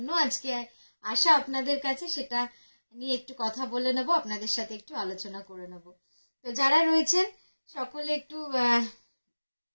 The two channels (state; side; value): inverted; both; correlation -1.00